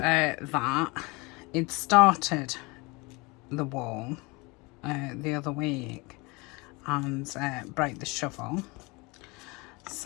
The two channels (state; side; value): quieter; right; 26.2 dB